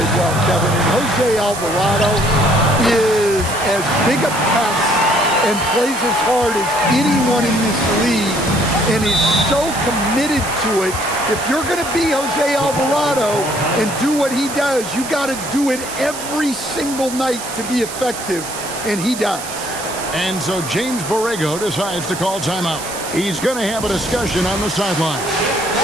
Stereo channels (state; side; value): noise; right; hiss, 10 dB below the sound